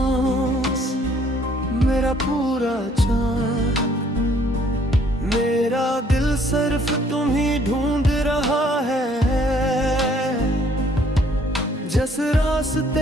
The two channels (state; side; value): normal; both; correlation 0.62